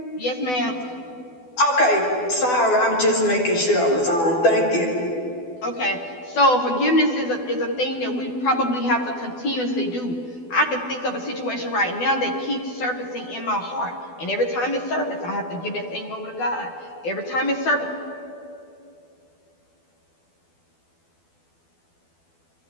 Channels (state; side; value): late; right; 12 ms